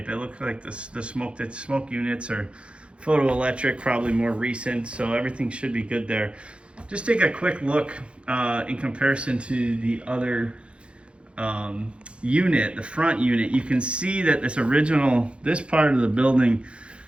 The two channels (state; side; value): late; left; 0.058 ms